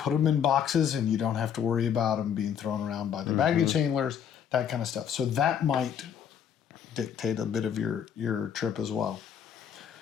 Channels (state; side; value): quieter; right; 8.3 dB